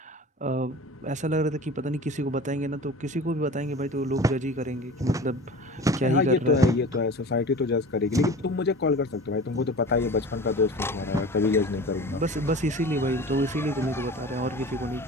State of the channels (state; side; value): normal; both; correlation 0.38